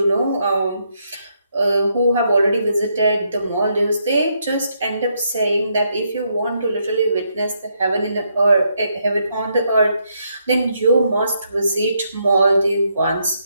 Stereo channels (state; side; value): inverted; both; correlation -0.77